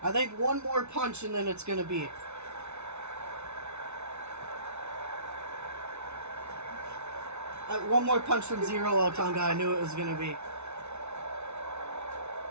I think one more punch and then it's going to be. One more punch from Zero Otunga, I knew it was going to be.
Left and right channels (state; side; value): late; left; 0.81 ms